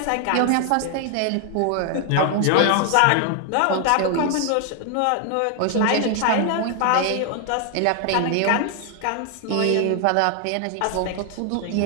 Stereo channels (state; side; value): different; both; correlation 0.00